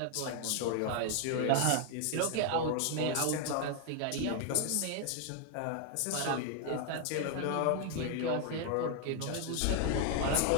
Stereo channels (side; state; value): both; different; correlation 0.00